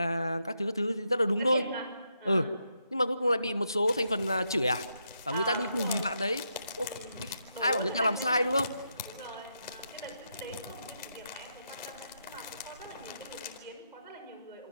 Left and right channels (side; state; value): both; inverted; correlation -0.81